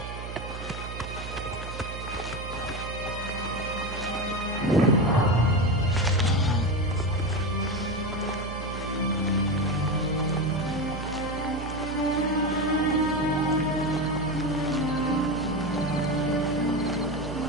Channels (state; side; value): noise; right; hum, 9 dB below the sound